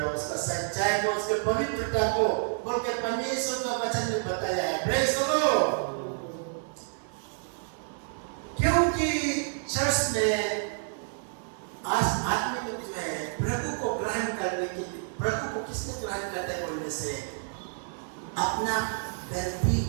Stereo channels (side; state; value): left; silent; 58 dB below the other